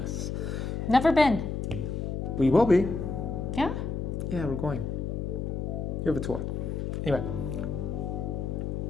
Never been. We will be. Yeah? Yeah, we're going. You have a tour. Anyway.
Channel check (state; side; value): noise; left; hum, 2 dB below the sound